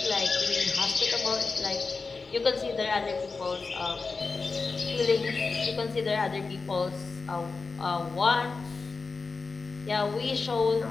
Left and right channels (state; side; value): quieter; right; 4.3 dB